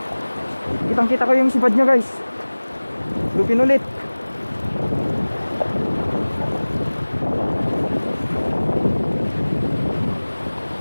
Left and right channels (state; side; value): inverted; both; correlation -1.00